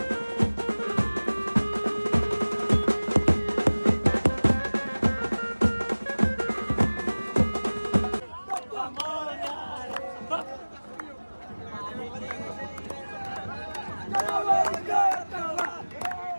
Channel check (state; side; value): inverted; both; correlation -1.00